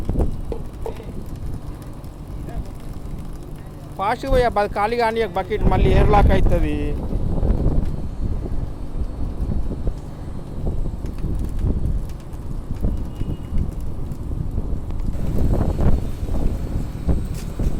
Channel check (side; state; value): both; identical; correlation 1.00